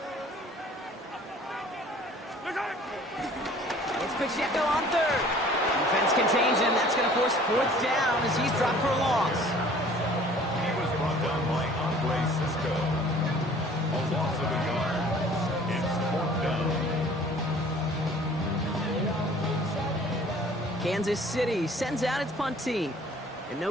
It's Pacheco on 3rd. Defense contains him. That's going to force 4th down as he's dropped for a loss. He was brought down by Andre Cisco. A loss of a yard. It's 4th down. Kansas City sends out its punt team. And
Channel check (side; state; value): both; normal; correlation 0.51